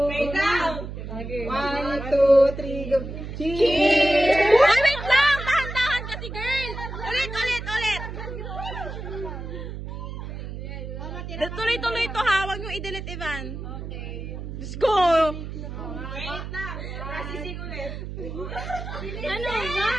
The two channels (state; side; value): noise; right; hum, 8 dB below the sound